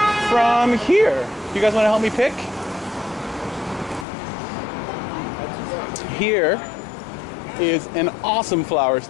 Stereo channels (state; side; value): drops out; right; at 4.0 s